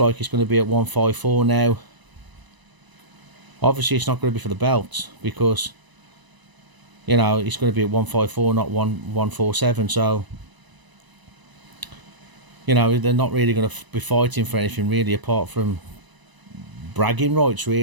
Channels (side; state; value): left; late; 1.0 ms